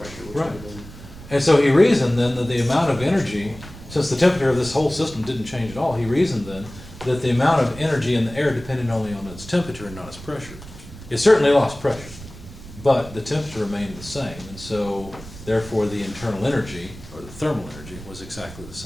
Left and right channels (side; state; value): right; noise; rumble, 16 dB below the sound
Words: which would Right. have been. And so he reasoned then that the amount of energy, since the temperature of this whole system didn't change at all, he reasoned then that the amount of energy in the air depended only on its temperature and not its pressure. It certainly lost pressure, but the temperature remained the same, and so therefore the internal energy, or the thermal energy, was exactly the